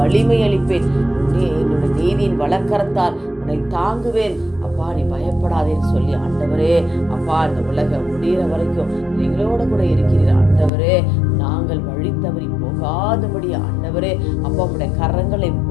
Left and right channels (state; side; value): drops out; right; at 10.7 s